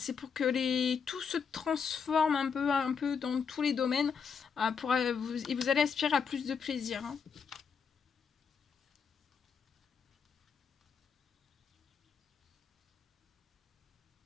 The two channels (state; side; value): quieter; right; 6.2 dB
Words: pour que tout se transforme un peu dans tous les domaines et vous allez aspirer à plus de plaisir. Hein.